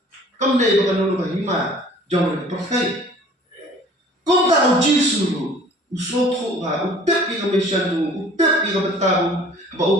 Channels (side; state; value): both; normal; correlation 0.50